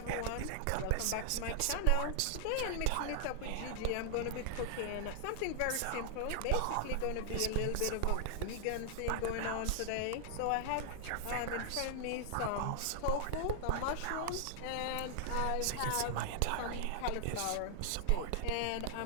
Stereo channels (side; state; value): both; different; correlation 0.00